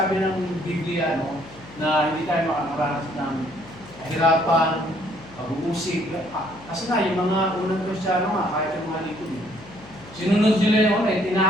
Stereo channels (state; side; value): noise; left; hum, 20 dB below the sound